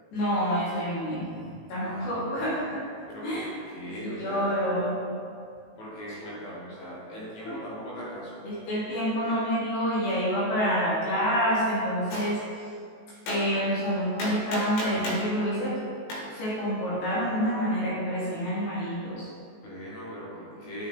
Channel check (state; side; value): late; right; 19 ms